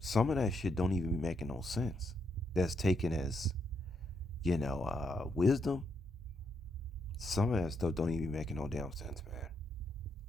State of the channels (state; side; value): normal; both; correlation 0.78